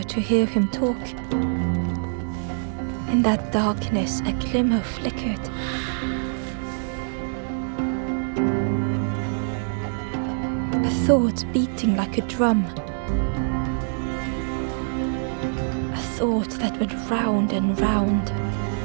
to hear him talk. In that darkness, a glimmer flickered. A thought beating like a drum. A thought that went round and round.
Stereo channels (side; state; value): left; silent; digital silence